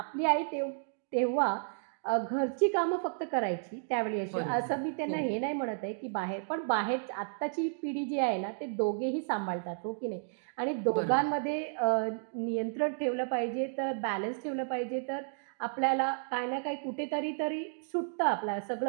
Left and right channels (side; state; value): left; silent; digital silence